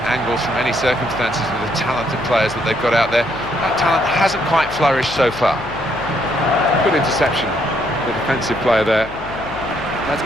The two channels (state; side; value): noise; left; hum, 16 dB below the sound